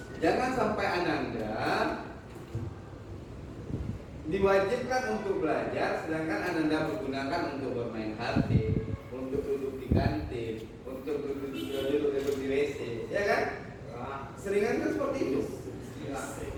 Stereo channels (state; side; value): identical; both; correlation 1.00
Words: Jangan sampai Ananda diwajibkan untuk belajar, sedangkan Ananda menggunakan untuk bermain HP, untuk duduk di kantin, untuk duduk di WC, ya kan? Seringan kan seperti itu,